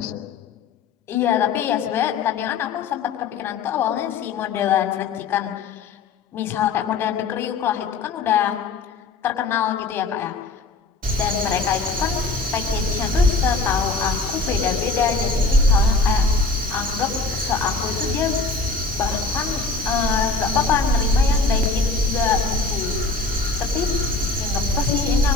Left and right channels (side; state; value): right; quieter; 3.9 dB